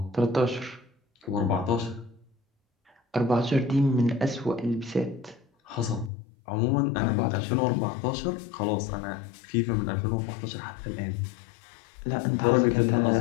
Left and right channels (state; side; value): drops out; right; at 6.1 s